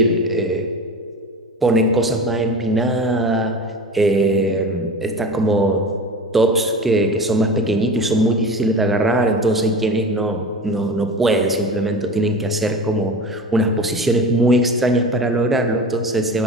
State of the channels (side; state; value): both; normal; correlation 0.31